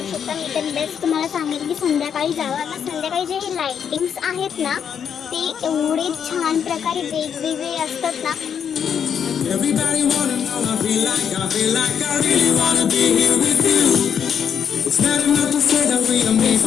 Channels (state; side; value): quieter; right; 7.8 dB